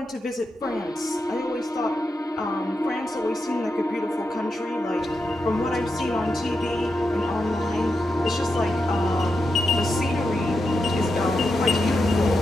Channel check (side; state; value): both; normal; correlation 0.87